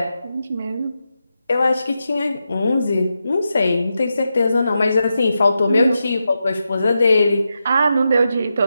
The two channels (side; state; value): both; inverted; correlation -0.88